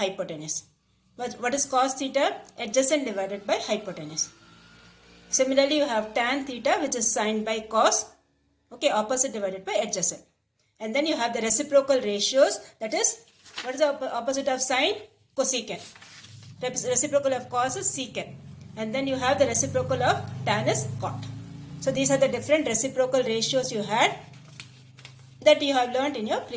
What is cos theta? Adjacent divided by hypotenuse. Similarly, you have tan theta, which is sine by cos, okay, opposite divided by adjacent. And then you have the reciprocal ratios, that is, what is the opposite of sine? Cosecant. Reciprocal of cos is secant. And then you have the reciprocal of tan is cot. So these are the different reciprocal ratios you had that you have learned in your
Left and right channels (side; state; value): both; identical; correlation 1.00